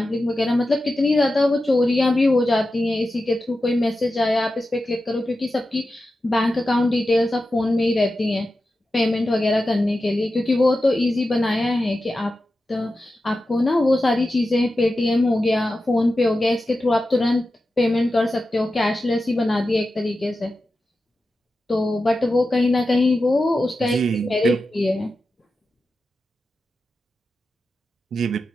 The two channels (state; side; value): normal; both; correlation 0.92